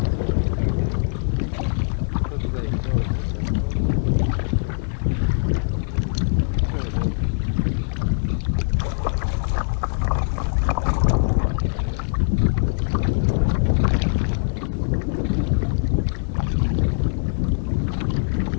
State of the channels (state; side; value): silent; right; 58 dB below the other